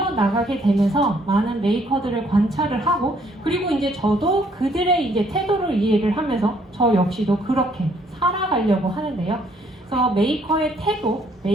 되면서 많은 메이커들을 관찰을 하고 그리고 이제 저도 그들의 이제 태도를 이해를 하면서 저 역시도 그렇게 살아가려고 하는데요. 그래서 메이커의 태도,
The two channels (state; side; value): normal; both; correlation 0.66